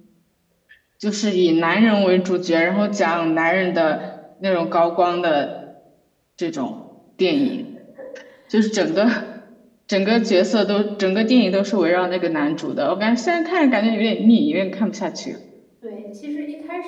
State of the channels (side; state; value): both; identical; correlation 1.00